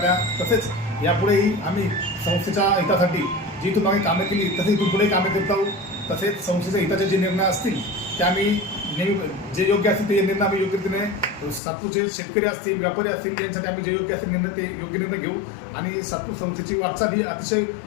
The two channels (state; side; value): drops out; right; at 11.6 s